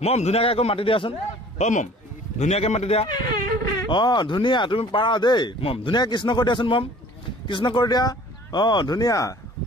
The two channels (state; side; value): normal; both; correlation 0.50